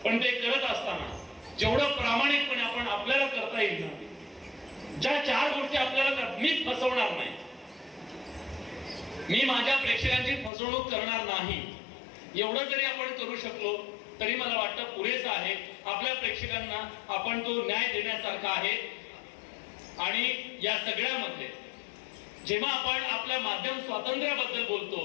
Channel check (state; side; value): drops out; right; at 10.5 s